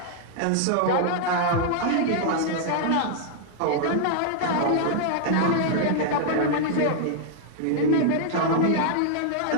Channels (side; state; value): both; different; correlation -0.01